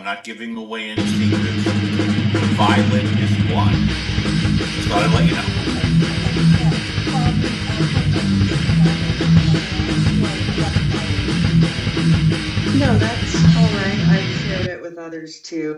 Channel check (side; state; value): both; identical; correlation 1.00